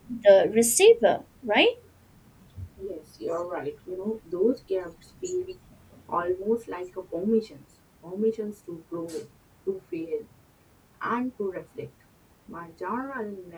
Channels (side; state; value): both; identical; correlation 1.00